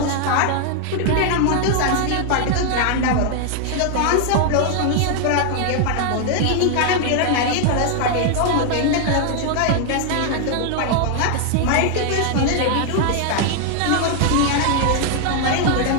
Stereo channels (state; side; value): different; both; correlation 0.00